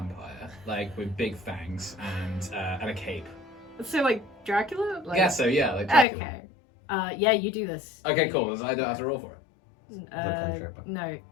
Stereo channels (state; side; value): drops out; right; at 6.1 s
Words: like with big fangs and a cape. So like Dracula? Like, Yeah, so yeah, like Dracula. Okay. Yeah, you do this. Okay, cool. So I don't have to roll for it. cantrip. No.